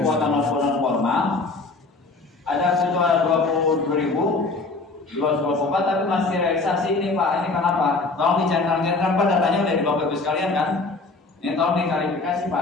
non formal ada sekitar 22.224 tapi masih realisasi ini Pak. Ini kenapa? Tolong dicentang-centang Pak, datanya udah di Bapak Ibu sekalian kan? Ini tolong diklarifikasi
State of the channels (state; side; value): quieter; right; 3.6 dB